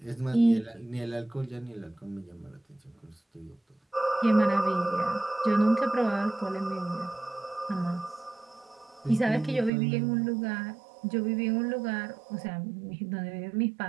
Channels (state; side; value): drops out; left; at 9.7 s